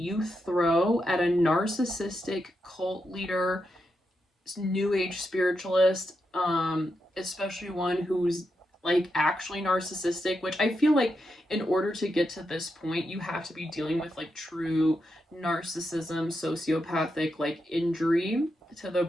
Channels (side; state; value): both; normal; correlation 0.85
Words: throw at a narcissistic cult leader, new age spiritualist, especially one who's like actually narcissistic, which I feel like in order to get to this point, you have to be dealing with like true narcissism, sociopathic like injury to the